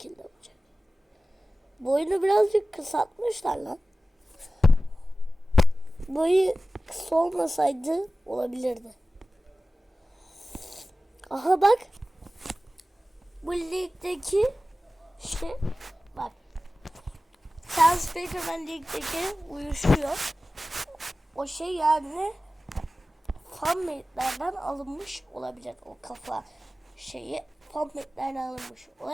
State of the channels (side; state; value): both; normal; correlation 0.96